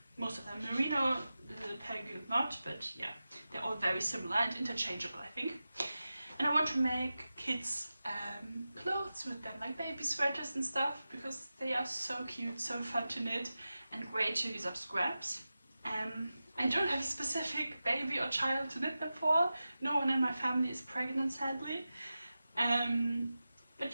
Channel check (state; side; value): inverted; both; correlation -0.94